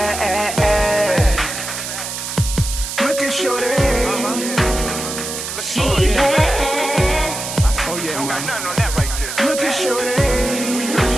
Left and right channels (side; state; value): right; noise; hiss, 6 dB below the sound